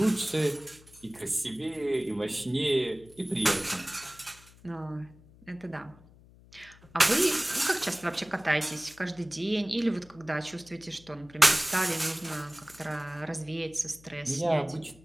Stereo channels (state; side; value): noise; left; hum, 24 dB below the sound